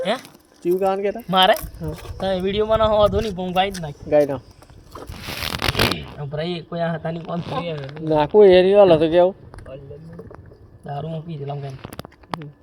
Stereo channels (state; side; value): identical; both; correlation 1.00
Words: હે ચીવ ગાવાનું કેતા મારે તમે વિડિયો બનાવ હોતો નહીં પણ ગાઈ જ નાખ ગાઈ ના ભાઈ કોઈ હતા નહીં કોણ થઈ ના કોઈ એરી વાળો તો કેવું દારૂ માં પી જલામ કેમ